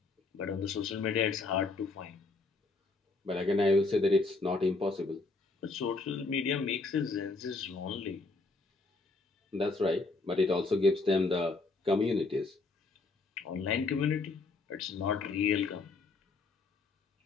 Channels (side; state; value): right; quieter; 3.6 dB